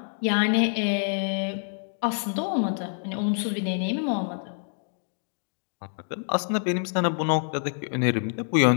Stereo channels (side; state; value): right; silent; 60 dB below the other